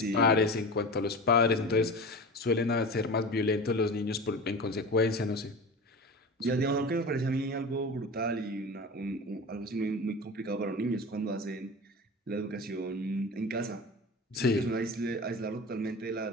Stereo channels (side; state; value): both; normal; correlation 0.32